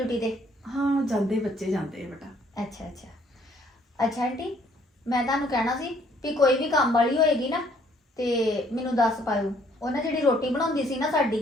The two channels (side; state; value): both; normal; correlation 0.63